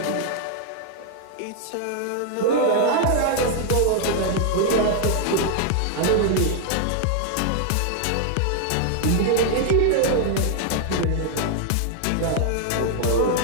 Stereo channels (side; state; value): both; different; correlation 0.00